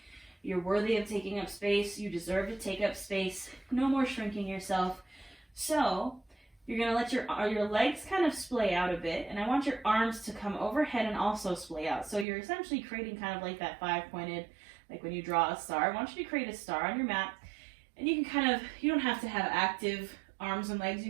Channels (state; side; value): drops out; left; at 12.2 s